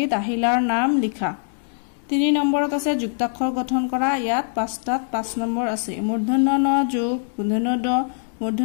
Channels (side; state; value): right; silent; digital silence